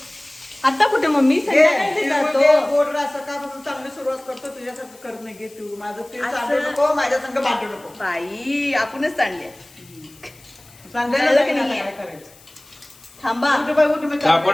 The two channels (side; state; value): left; noise; hiss, 25 dB below the sound